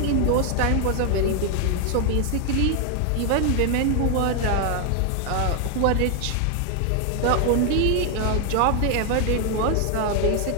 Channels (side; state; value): both; different; correlation 0.00